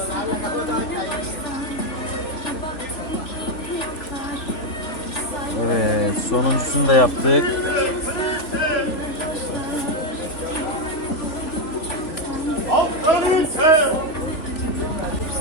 Evet, sonuncusunu da yaptık.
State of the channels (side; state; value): right; late; 3.4 ms